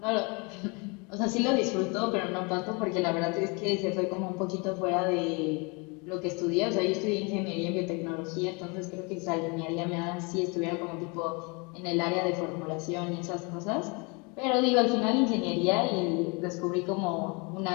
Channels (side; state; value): right; quieter; 30.7 dB